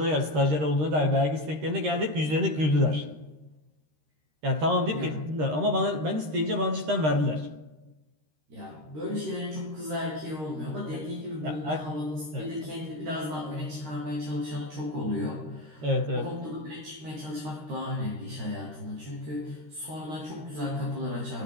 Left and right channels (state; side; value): late; left; 13 ms